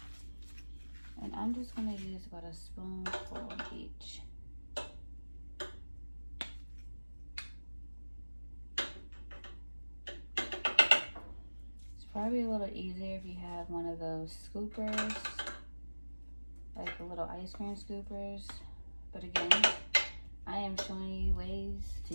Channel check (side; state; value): both; inverted; correlation -1.00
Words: And I'm just gonna use about a spoonful each. It's probably a little easier if you have one of those scoopers, like the little ice cream scoopers. But again, I am showing you ways